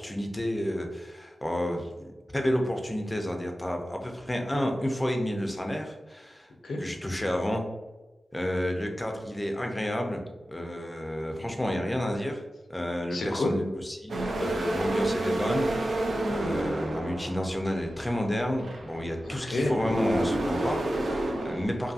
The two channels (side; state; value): both; normal; correlation 0.94